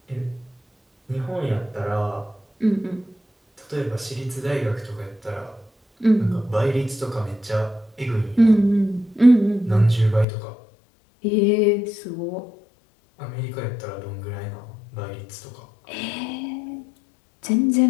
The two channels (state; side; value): drops out; right; at 10.2 s